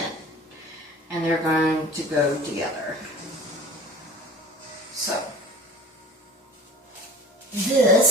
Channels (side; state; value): both; normal; correlation 0.41